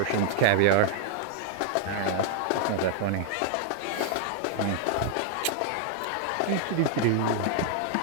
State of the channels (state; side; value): different; both; correlation 0.00